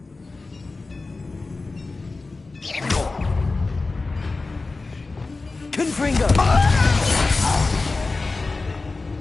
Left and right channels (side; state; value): right; quieter; 3.6 dB